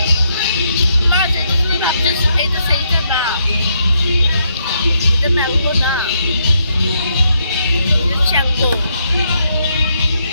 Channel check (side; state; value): both; inverted; correlation -0.76